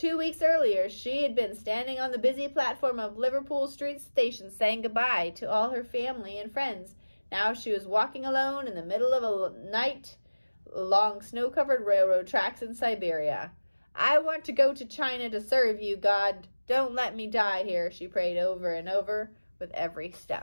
weeks earlier, she had been standing on the busy platform of Liverpool Street Station saying goodbye to all her family and friends. Now she was walking alone in the middle of a night along snow-covered railroad tracks in Siberia. "I want to go to China to serve you, God. Don't let me die here," she prayed over and over with every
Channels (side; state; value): both; inverted; correlation -1.00